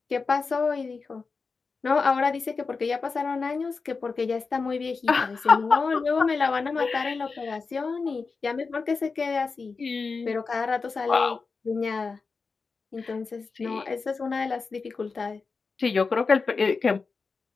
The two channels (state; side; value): quieter; right; 4.6 dB